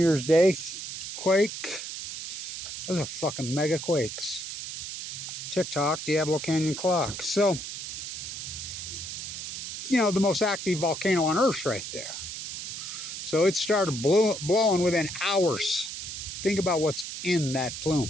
Day quake. Those are fucking megaquakes. TikTok, Diablo Canyon clock. So, you know, the most active volcano on Earth right there. So it started blowing within hours Think about what's in that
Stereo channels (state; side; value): noise; right; hiss, 7 dB below the sound